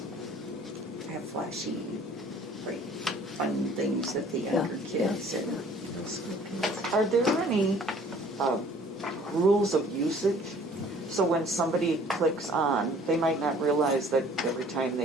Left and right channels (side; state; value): both; normal; correlation 0.53